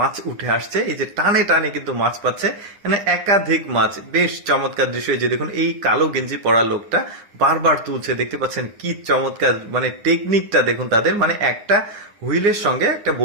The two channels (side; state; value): left; late; 9.7 ms